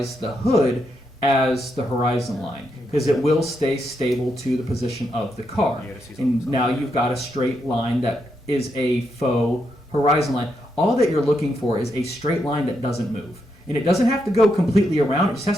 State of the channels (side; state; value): both; normal; correlation 0.81